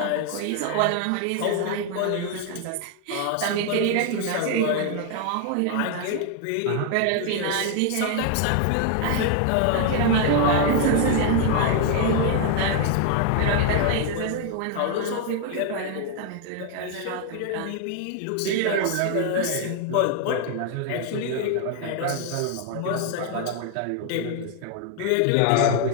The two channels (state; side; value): different; both; correlation 0.00